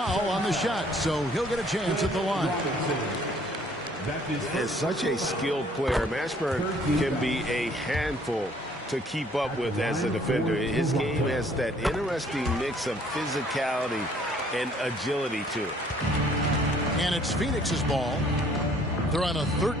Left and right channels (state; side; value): normal; both; correlation 0.60